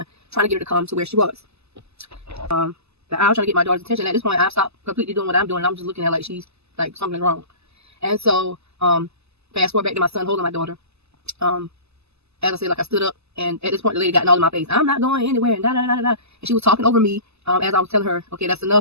trying to get her to come to where she was. I was trying to get my daughter's attention. At this point, I stopped completely doing what I'm doing. I'm just looking at her like she's like something's wrong. And so fast forward back to my son holding my daughter. As I said, like I stood up, and at this point the lady got all in my face. I'm not going anywhere, and da da da da da. And she was talking over me as I was telling her, okay, that's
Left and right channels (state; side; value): late; left; 0.79 ms